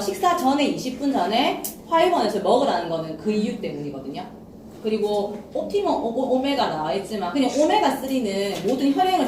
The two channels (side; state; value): both; identical; correlation 1.00